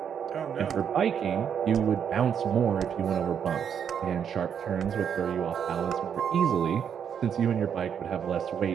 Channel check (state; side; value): quieter; left; 8.0 dB